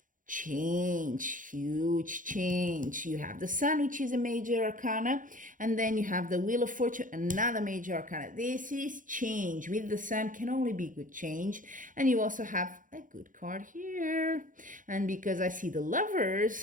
Change, huge change. You have the Sun, which is a major arcana, and then you have the Wheel of Fortune, another major arcana. This is change. With the Sun can only be good change. And you also have a good card here. And because I see the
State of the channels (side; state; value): left; late; 0.38 ms